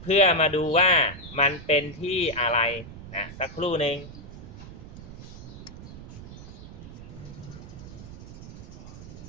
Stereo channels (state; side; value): noise; right; rumble, 13 dB below the sound